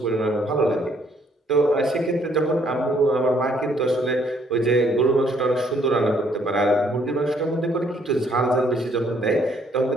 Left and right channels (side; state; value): both; normal; correlation 0.66